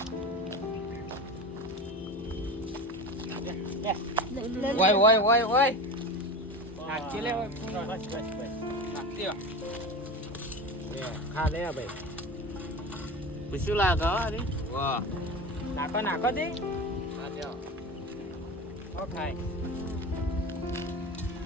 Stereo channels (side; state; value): both; normal; correlation 0.28